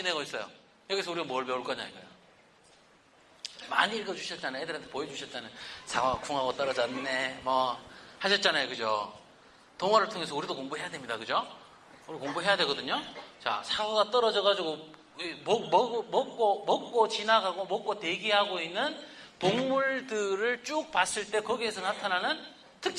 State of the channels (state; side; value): identical; both; correlation 1.00